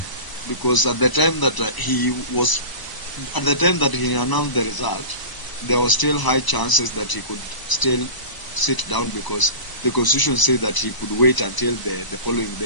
Because at the time that he announced the result, there was still high chances that he could still sit down because the constitution said that he could wait until the following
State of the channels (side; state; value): right; late; 1.0 ms